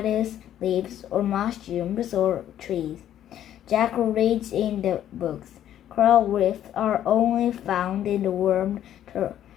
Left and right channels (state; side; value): quieter; right; 11.2 dB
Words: leaves or mushrooms or trees. Jack reads in the books. Coral reefs are only found in the warm